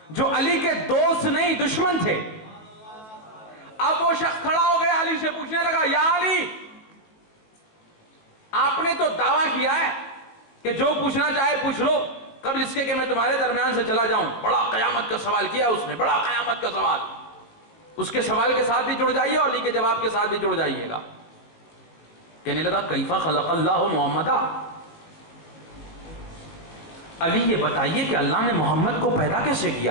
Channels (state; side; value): late; right; 18 ms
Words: جو علی کے دوست نہیں دشمن تھے. اب وہ شخص کھڑا ہو گیا علی سے پوچھنے لگا یا علی آپ نے تو دعویٰ کیا ہے کہ جو پوچھنا چاہے پوچھ لو قبل اس کے کہ میں تمہارے درمیان سے چلا جاؤں. بڑا قیامت کا سوال کیا اس نے، بڑا قیامت کا سوال. اس کے سوال کے ساتھ بھی جڑ جائیے اور علی کے جواب کے ساتھ بھی جڑ جائیے گا. کہنے لگا کیفا خلق اللہ محمدا، علی یہ بتائیے کہ اللہ نے محمد کو پیدا کیسے